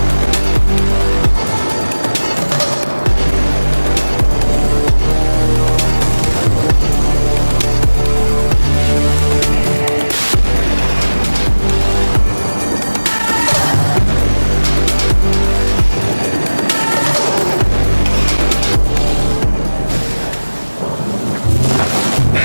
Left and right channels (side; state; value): both; inverted; correlation -1.00